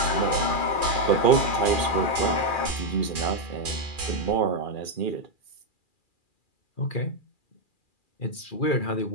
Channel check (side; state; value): right; late; 2.4 ms